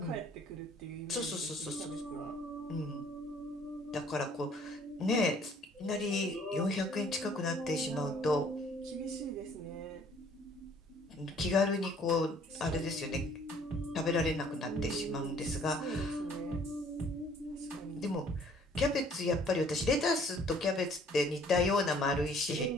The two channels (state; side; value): normal; both; correlation 0.58